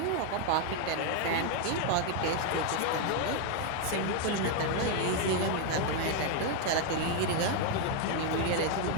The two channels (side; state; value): both; different; correlation 0.01